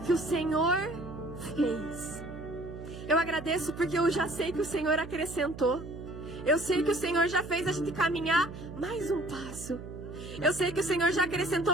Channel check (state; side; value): noise; right; hum, 12 dB below the sound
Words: o Senhor fez. Eu agradeço porque eu já sei que o Senhor acrescentou. Eu sei que o Senhor já fez a gente caminhar mais um passo. Eu sei que o Senhor já